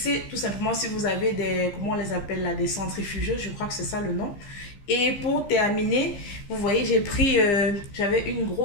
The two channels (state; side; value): late; right; 15 ms